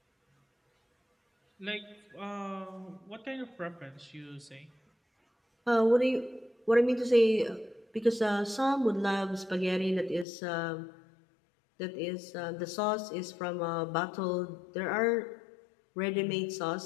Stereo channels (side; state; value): right; drops out; at 10.2 s